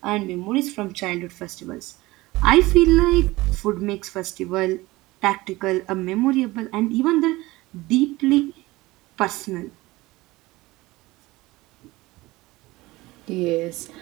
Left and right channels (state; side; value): quieter; left; 20.0 dB